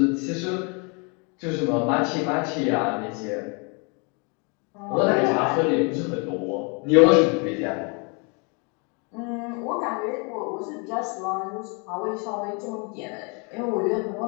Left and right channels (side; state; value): right; quieter; 33.9 dB